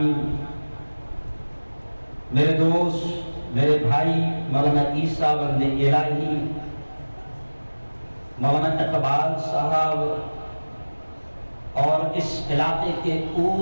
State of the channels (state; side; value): inverted; both; correlation -1.00